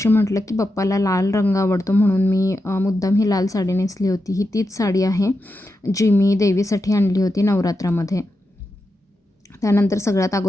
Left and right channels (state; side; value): normal; both; correlation 0.88